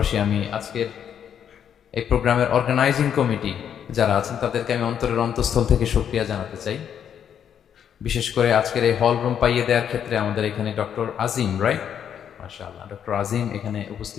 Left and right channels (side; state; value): right; quieter; 8.7 dB